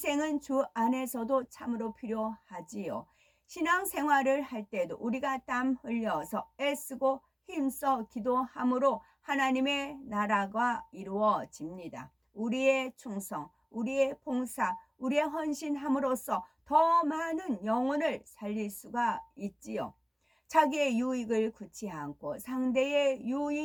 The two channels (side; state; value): both; identical; correlation 1.00